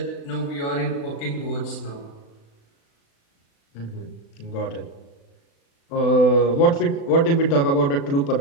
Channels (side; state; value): right; late; 36 ms